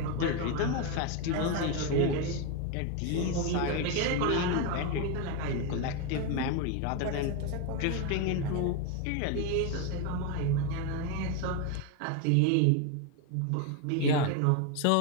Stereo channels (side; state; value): both; different; correlation 0.02